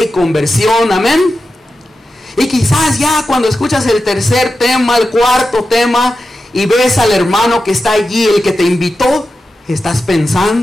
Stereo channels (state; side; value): normal; both; correlation 0.91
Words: y conversión, amén. Y quizás ya cuando escuchas el tercer tema, el cuarto tema, y ves al hermano que está allí, el que te invitó, estás